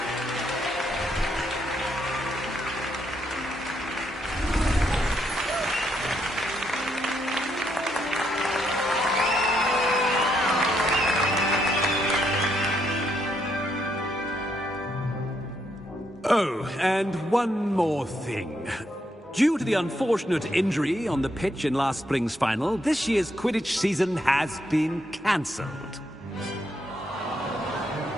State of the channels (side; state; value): both; normal; correlation 0.76